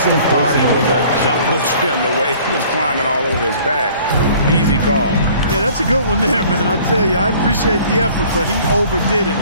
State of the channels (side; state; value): both; inverted; correlation -0.52